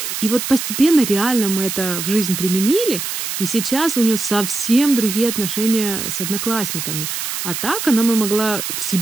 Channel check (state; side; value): noise; right; hiss, 4 dB below the sound